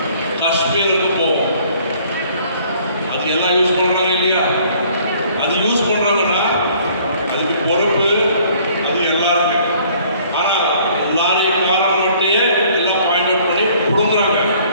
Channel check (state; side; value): inverted; both; correlation -0.58